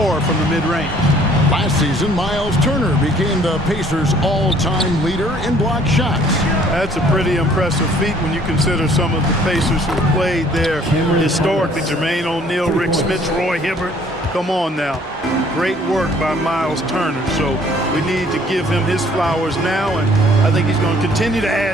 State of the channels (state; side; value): normal; both; correlation 0.58